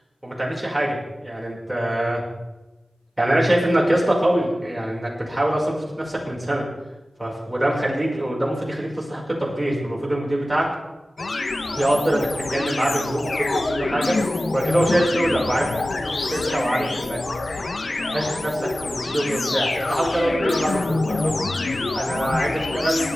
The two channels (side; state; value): both; normal; correlation 0.95